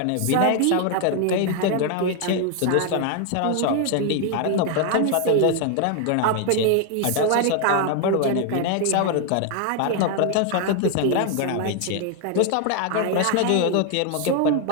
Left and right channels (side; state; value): both; different; correlation 0.00